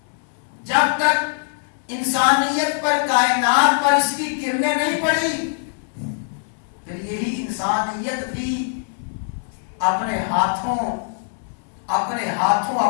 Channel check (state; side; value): silent; right; 64 dB below the other